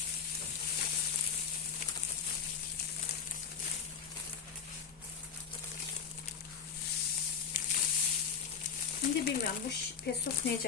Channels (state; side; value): quieter; right; 6.5 dB